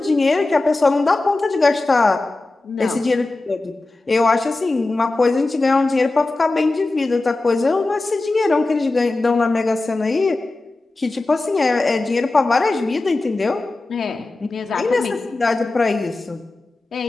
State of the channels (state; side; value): quieter; right; 3.1 dB